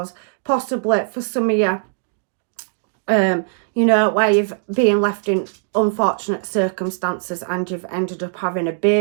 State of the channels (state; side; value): silent; left; digital silence